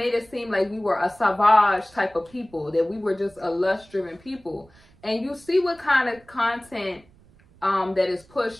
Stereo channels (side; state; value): right; noise; rumble, 28 dB below the sound